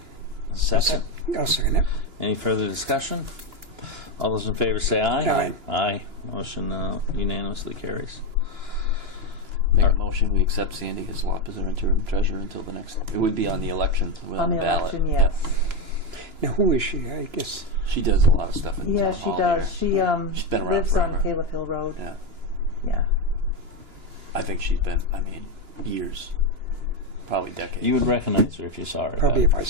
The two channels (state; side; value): late; left; 2.9 ms